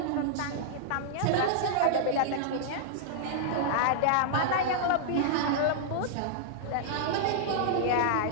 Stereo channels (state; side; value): different; both; correlation -0.01